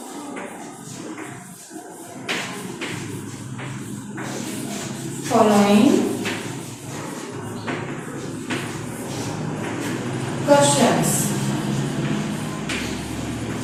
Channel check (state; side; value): identical; both; correlation 1.00